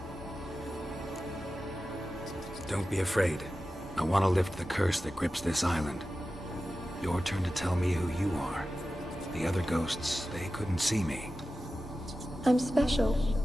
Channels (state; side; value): normal; both; correlation 0.93